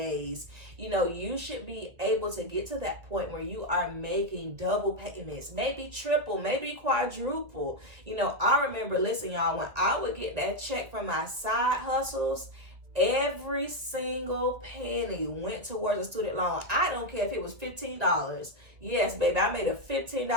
You should be able to get to that point where you are making double payments, maybe triple, maybe quadruple. I remember, listen, y'all, when I would get that check from my side hustles, every single penny went towards a student loan. I don't care if it was $15. Yes, baby, I made a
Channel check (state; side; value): late; left; 2.1 ms